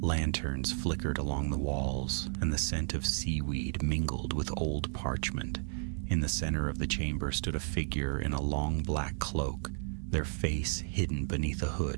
flickered along the walls, and the scent of seaweed mingled with old parchment. In the center of the chamber stood a figure in a long black cloak, their face hidden beneath a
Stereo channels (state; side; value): silent; left; 55 dB below the other